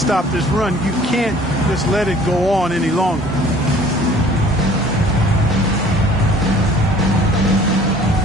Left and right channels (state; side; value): normal; both; correlation 0.52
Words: this run. You can't just let it go on any longer.